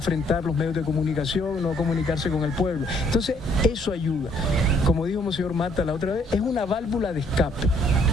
los medios de comunicación, no comunicarse con el pueblo. Entonces, eso ayuda. Como dijo Monseñor Mata la otra vez, es una válvula de escape.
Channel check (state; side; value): normal; both; correlation 0.66